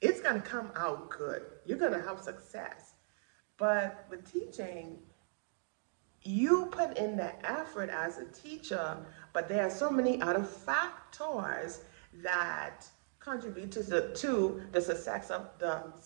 gonna come out good. You're gonna have success. But with teaching, you put in the effort as a teacher, but there are so many other factors that contribute to the success of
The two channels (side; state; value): left; silent; digital silence